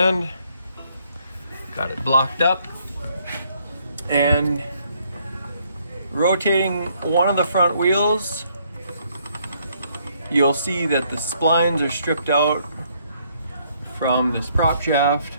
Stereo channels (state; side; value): inverted; both; correlation -0.68